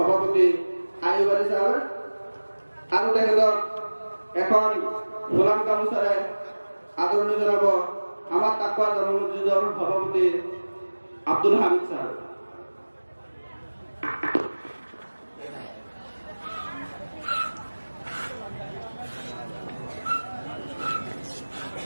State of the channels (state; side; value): inverted; both; correlation -1.00